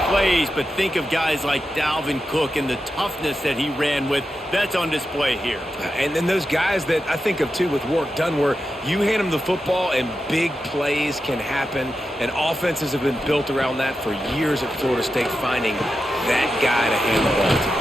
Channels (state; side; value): normal; both; correlation 0.89